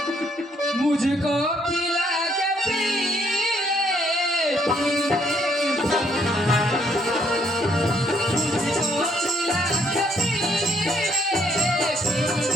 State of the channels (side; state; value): both; normal; correlation 0.69